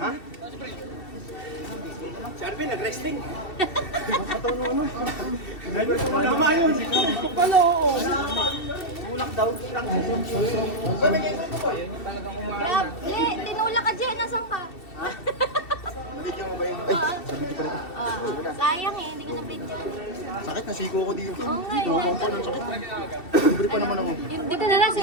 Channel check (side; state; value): right; late; 2.7 ms